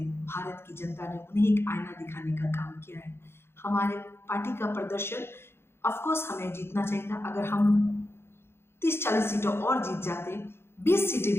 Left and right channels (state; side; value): late; right; 0.12 ms